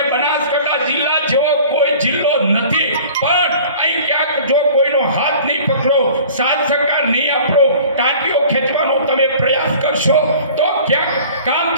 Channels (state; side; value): inverted; both; correlation -0.46